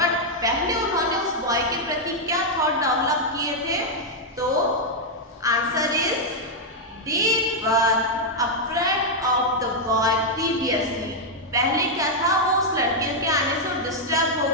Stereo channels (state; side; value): normal; both; correlation -0.02